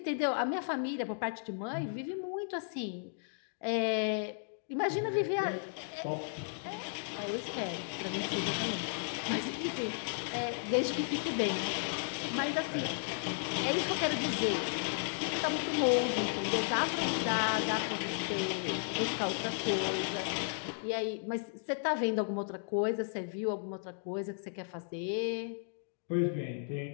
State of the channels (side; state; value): right; silent; digital silence